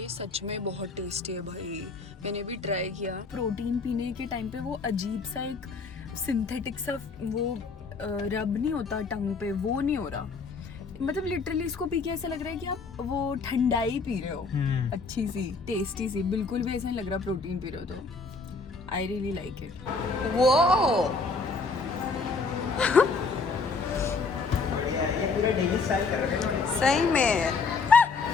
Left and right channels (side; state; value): right; quieter; 4.3 dB